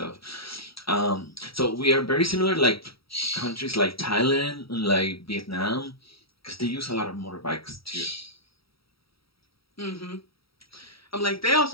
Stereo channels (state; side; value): late; right; 0.75 ms